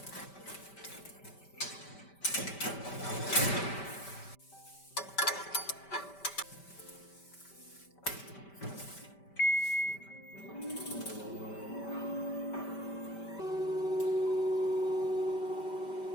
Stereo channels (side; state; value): right; late; 5.1 ms